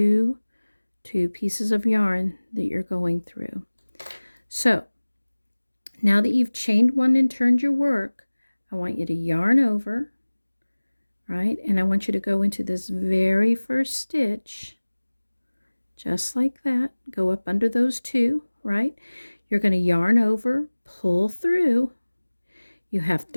pieces of yarn that you're going through. So now that you've chained one and turned your work, I want you to yarn over, right? And I want you to go into this very first stitch, just like that. Go up under those two, right? You're going to yarn over, pull through. You have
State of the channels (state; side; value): inverted; both; correlation -1.00